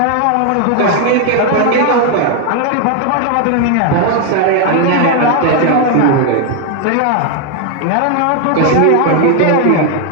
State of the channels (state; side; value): different; both; correlation 0.01